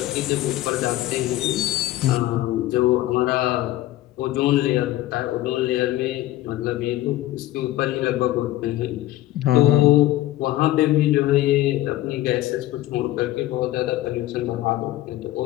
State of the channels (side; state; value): right; quieter; 15.6 dB